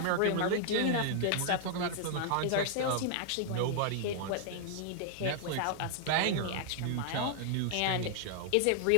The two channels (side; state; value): both; different; correlation -0.01